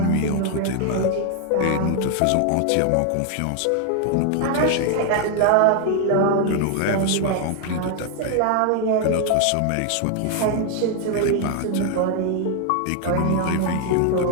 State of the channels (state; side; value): different; both; correlation 0.00